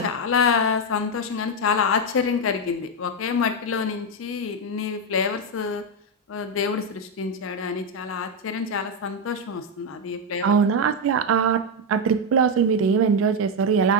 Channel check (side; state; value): both; normal; correlation 0.05